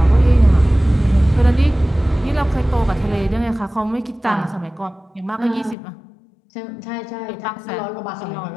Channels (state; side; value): drops out; right; at 5.8 s